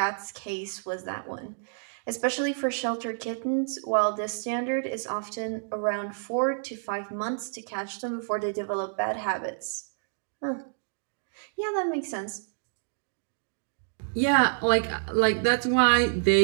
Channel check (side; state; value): left; silent; digital silence